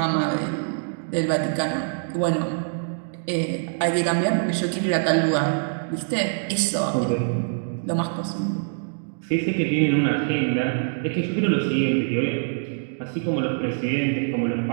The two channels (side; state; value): left; silent; digital silence